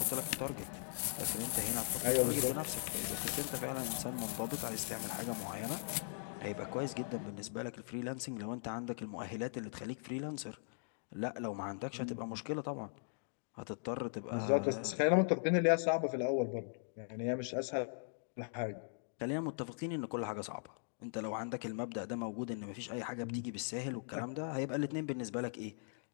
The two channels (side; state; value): right; silent; digital silence